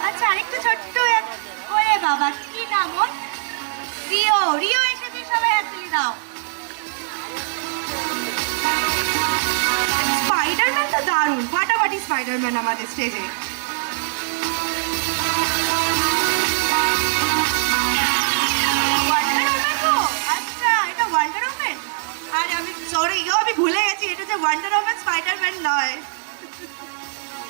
আচ্ছা, আরেকটু ছোট্ট ওরে বাবা, কি নাম ওর? রিও। রিও এসেছে, সবাই হাততালি দাও। স্পাইডারম্যান তো দারুণ, ফাটাফাটি স্পাইডারম্যান আমাদের স্টেজে। ওয়ান্ডার ওম্যান তো? আচ্ছা, এটা ওয়ান্ডার ওম্যান। আর আমি সরি গো, আমি ভুলে গেছি এটা যে ওয়ান্ডার ওম্যান, স্পাইডারম্যান নয়।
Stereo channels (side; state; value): left; silent; 58 dB below the other